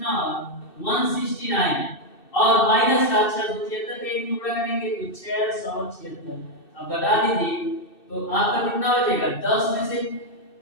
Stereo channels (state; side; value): late; right; 2.6 ms